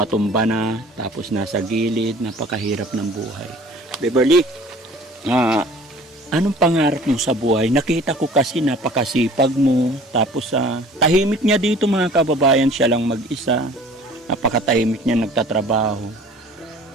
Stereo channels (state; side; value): normal; both; correlation 0.48